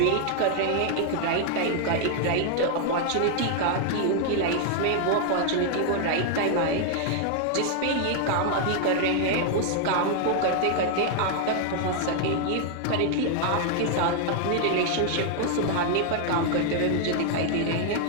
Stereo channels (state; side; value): different; both; correlation 0.00